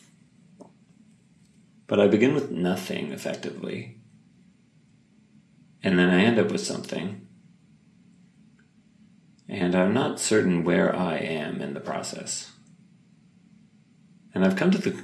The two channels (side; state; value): both; identical; correlation 1.00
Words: But I begin with nothing, effectively, and then I end up with something, and I'm not certain where I am in the process. And I've come to the